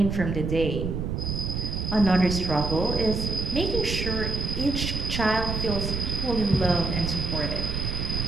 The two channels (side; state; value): right; noise; rumble, 2 dB below the sound